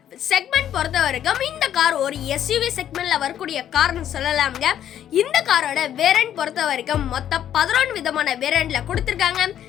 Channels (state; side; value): quieter; right; 10.5 dB